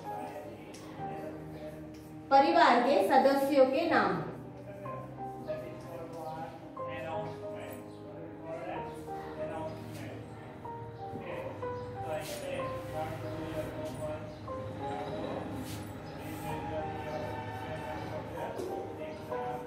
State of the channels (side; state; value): both; identical; correlation 1.00